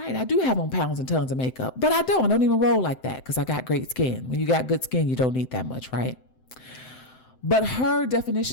I do have on pounds and tons of makeup, but I don't even roll like that because I got great skin. When you got good skin, you don't need that much, right? But her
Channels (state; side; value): late; right; 7.8 ms